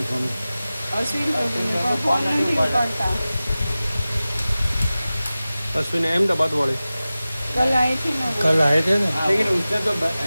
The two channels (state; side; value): inverted; both; correlation -0.96